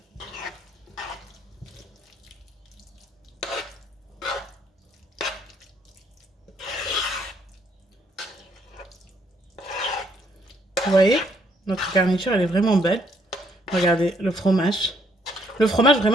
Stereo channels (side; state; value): both; normal; correlation 0.69